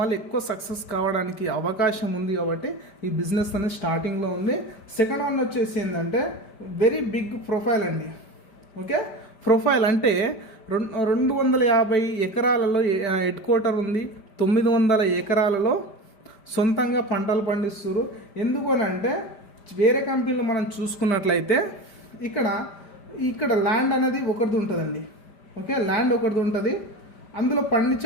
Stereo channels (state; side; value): late; right; 5.0 ms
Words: ఎక్కువ సక్సెస్ కావడానికి అవకాశం ఉంది. కాబట్టి ఈ బిజినెస్ అనేది స్టార్టింగ్లో ఉంది. సెకండ్ వన్ వచ్చేసి ఏంటంటే వెరీ బిగ్ ప్రొఫైల్ అండి. ఓకే, ప్రొఫైల్ అంటే 250 ఎకరాలలో హెడ్ క్వార్టర్ ఉంది. 900 ఎకరాలలో సొంతంగా పంటలు పండిస్తారు. ఎందుకు అని అంటే వేరే కంపెనీలో మనం చూసుకున్నట్లయితే ఇక్కడ ల్యాండ్ అనేది ఒకరిది ఉంటుందండి. ఓకే, ల్యాండ్ ఒకరిది ఉంటుంది, అందులో